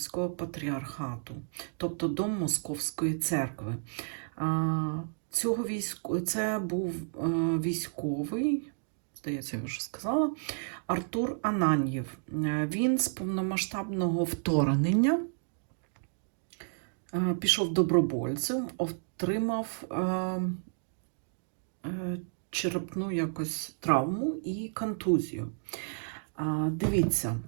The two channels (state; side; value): silent; left; digital silence